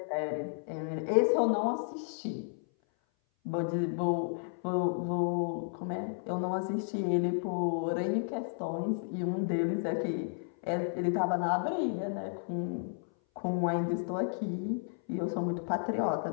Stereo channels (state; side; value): silent; right; 56 dB below the other